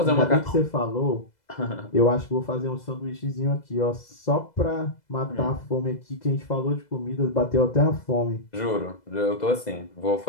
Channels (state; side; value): late; right; 2.0 ms